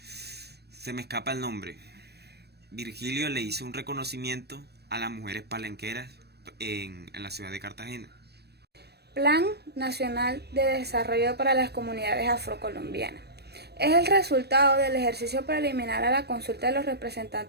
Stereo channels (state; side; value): late; left; 0.47 ms